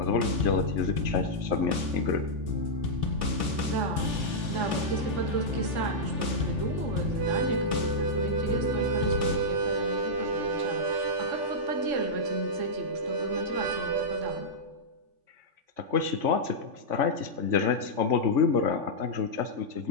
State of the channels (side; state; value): left; late; 3.5 ms